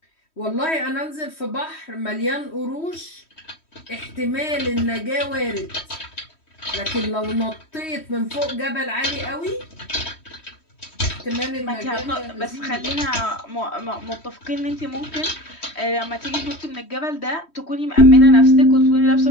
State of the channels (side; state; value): right; late; 3.1 ms